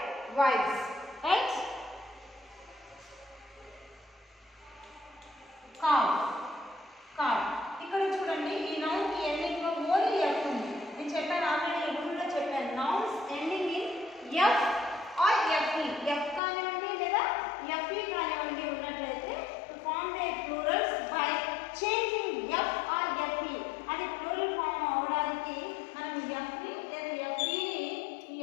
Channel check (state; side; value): drops out; right; at 16.4 s